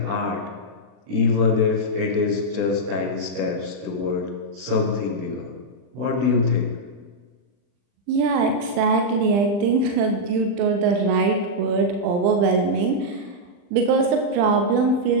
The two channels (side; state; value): left; late; 40 ms